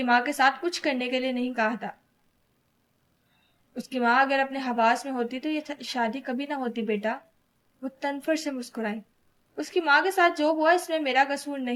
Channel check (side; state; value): both; identical; correlation 1.00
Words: ماں کے ساتھ کچھ کرنے کے لیے نہیں کہا تھا۔ اس کی ماں اگر اپنے حواس میں ہوتی تو یہ شادی کبھی نہ ہوتی بیٹا۔ وہ تنفر سے مسکرائی۔ اس کی ماں کے ساتھ جو ہوا اس میں میرا قصور